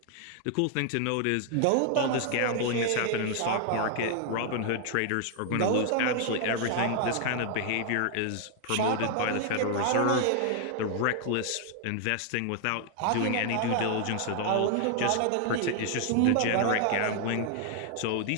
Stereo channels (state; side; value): different; both; correlation 0.00